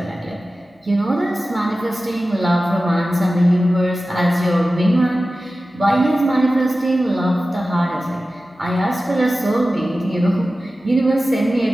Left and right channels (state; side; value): normal; both; correlation 0.95